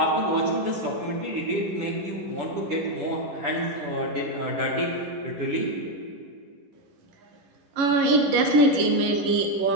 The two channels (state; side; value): late; left; 11 ms